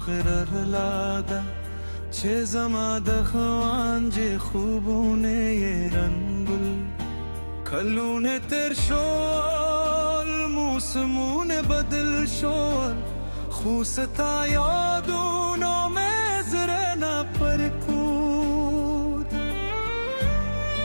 غرر لاده چه زما دخوان جه خوبونه ی رنگل کلونه تر شول موسمونه بدل شول خوستا یادونو مزرنا پرکود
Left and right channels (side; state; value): both; inverted; correlation -1.00